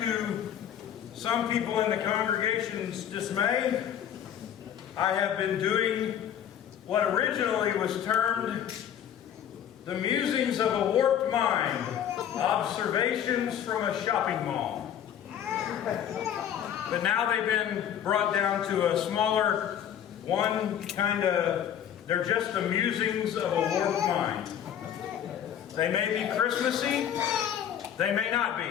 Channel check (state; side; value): quieter; right; 9.6 dB